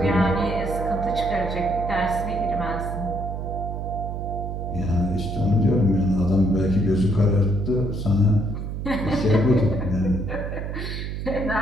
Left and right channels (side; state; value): right; noise; hum, 5 dB below the sound